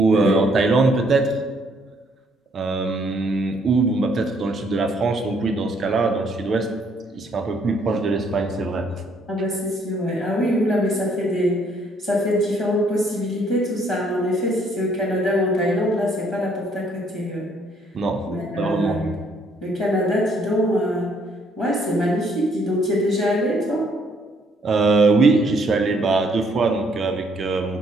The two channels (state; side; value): normal; both; correlation 0.67